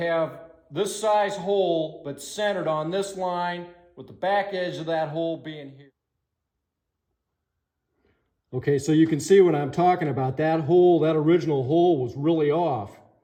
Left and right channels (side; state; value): both; identical; correlation 1.00